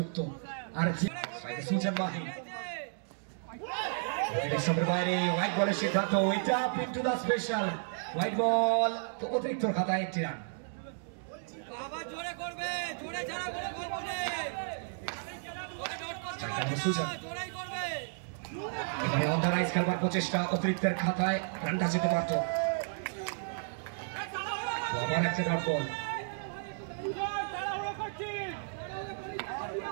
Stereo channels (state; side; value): silent; left; digital silence